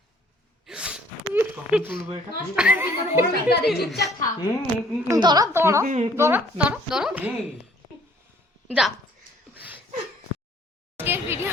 কখন তুলবো এটা? চুপচাপ থাক। ধরো যা।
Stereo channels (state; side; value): normal; both; correlation 0.58